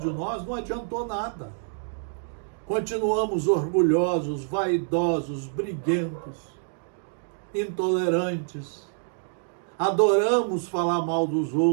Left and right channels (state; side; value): silent; left; digital silence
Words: nós não adiantou nada. Continuamos orgulhosos, vaidosos, briguentos, intolerantes, adoramos falar mal dos